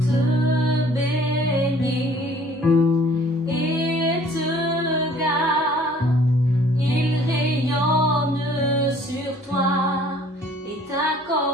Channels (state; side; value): normal; both; correlation 0.55